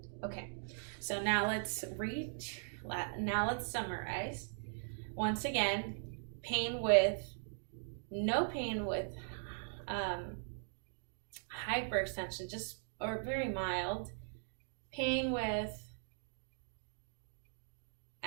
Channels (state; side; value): silent; left; digital silence